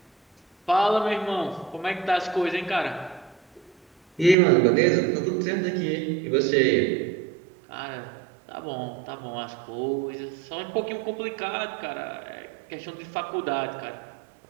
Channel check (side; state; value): left; drops out; at 4.4 s